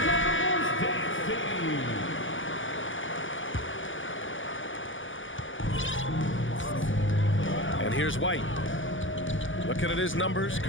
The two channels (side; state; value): right; late; 0.57 ms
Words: And here's White. Looking at his numbers,